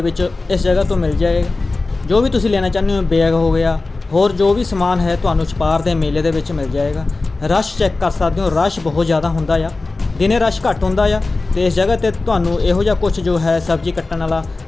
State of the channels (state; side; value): quieter; right; 3.4 dB